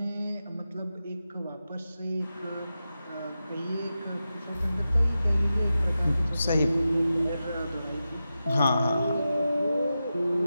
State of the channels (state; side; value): inverted; both; correlation -0.91